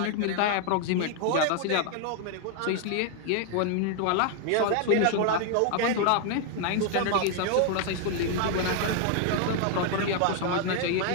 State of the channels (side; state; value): both; different; correlation 0.00